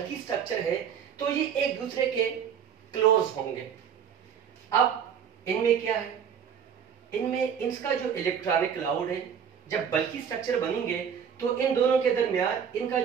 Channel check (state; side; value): quieter; left; 7.8 dB